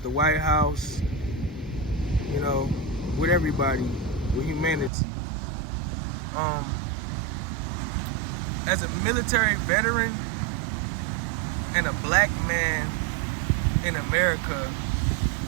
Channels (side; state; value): left; drops out; at 4.9 s